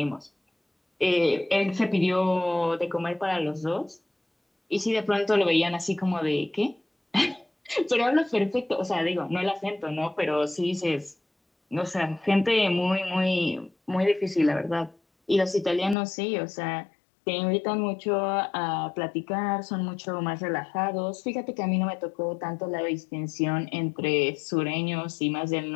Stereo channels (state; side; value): drops out; right; at 16.0 s